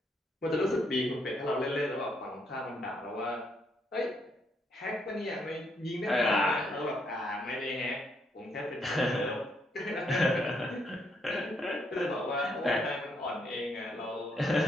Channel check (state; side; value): normal; both; correlation 0.74